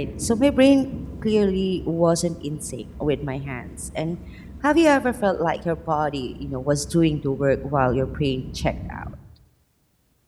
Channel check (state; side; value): identical; both; correlation 1.00